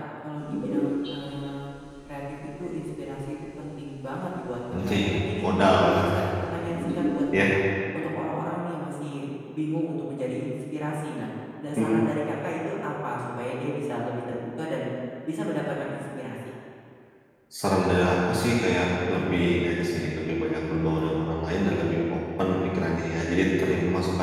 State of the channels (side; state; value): both; identical; correlation 1.00